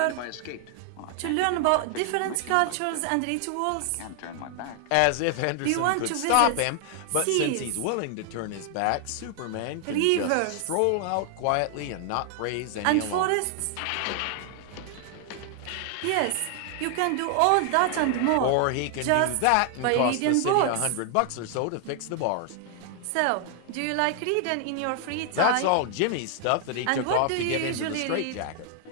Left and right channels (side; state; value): both; different; correlation 0.00